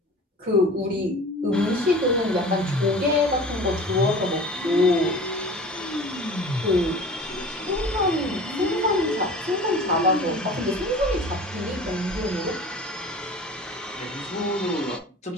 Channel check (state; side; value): normal; both; correlation 0.40